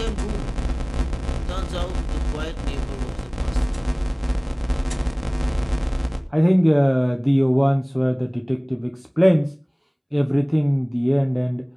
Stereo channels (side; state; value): both; identical; correlation 1.00